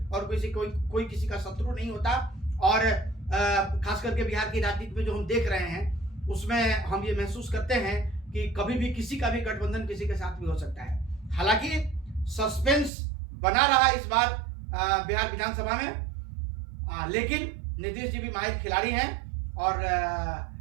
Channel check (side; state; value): left; drops out; at 12.9 s